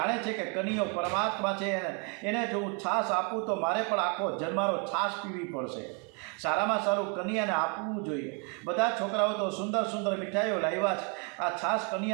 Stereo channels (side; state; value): left; quieter; 36.0 dB